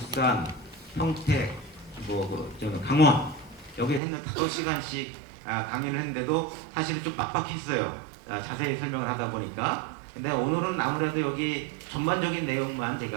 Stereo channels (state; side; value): drops out; left; at 4.0 s